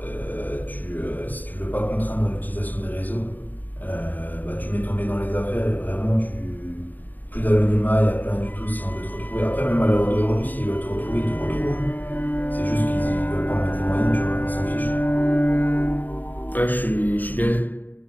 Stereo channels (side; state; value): right; late; 0.086 ms